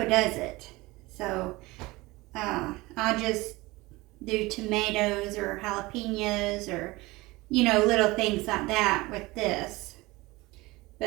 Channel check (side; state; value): left; quieter; 21.4 dB